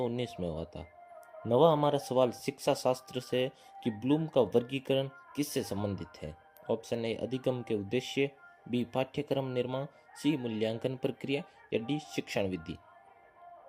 में हुआ था। नवा हमारा सवाल शिक्षा शास्त्र से कि ब्लूम का वर्गीकरण किससे संबंधित है। ऑप्शन ए अधिगम के उद्देश्य, बी पाठ्यक्रम निर्माण, सी मूल्यांकन प्रक्रिया या डी शिक्षण विधि।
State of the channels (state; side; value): identical; both; correlation 1.00